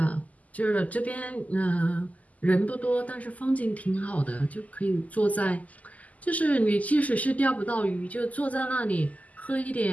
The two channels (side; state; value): right; late; 0.075 ms